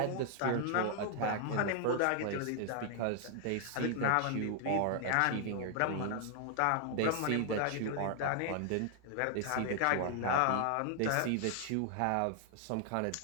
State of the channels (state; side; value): different; both; correlation 0.00